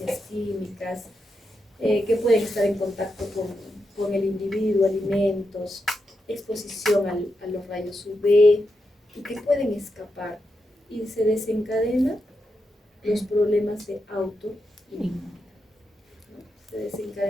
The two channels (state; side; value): normal; both; correlation 0.85